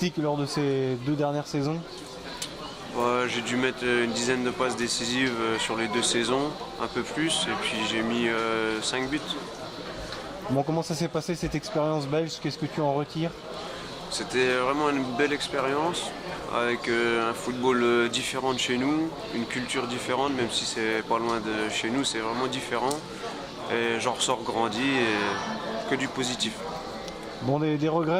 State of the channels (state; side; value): identical; both; correlation 1.00